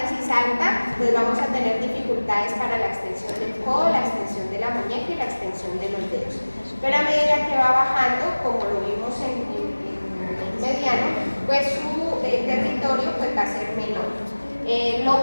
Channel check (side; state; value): both; inverted; correlation -1.00